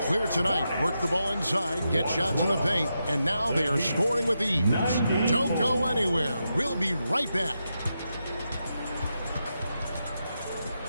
clear tonight. Work the ball inside, get shots in the paint, and now they are scoring with ease. Don't go anywhere. We'll be right back.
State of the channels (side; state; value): both; inverted; correlation -0.86